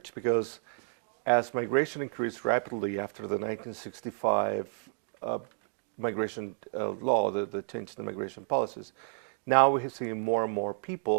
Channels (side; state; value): left; silent; digital silence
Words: because as migration increased rapidly after the 1965 migration law, the change in the migration policies, now we're seeing more and more